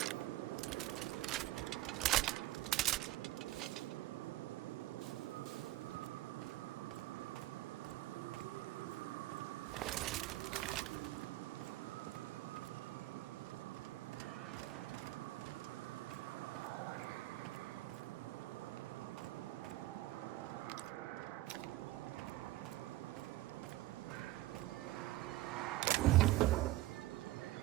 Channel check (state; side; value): quieter; left; 16.4 dB